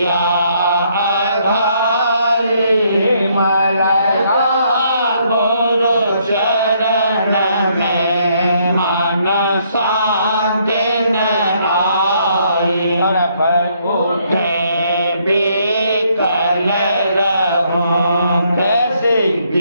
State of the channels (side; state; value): both; inverted; correlation -0.70